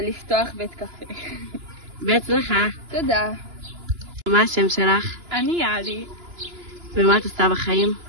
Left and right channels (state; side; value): late; left; 2.9 ms